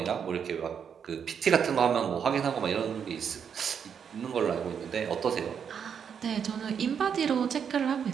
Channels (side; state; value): left; quieter; 7.4 dB